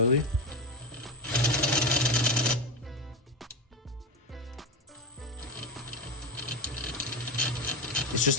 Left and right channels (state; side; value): normal; both; correlation 0.19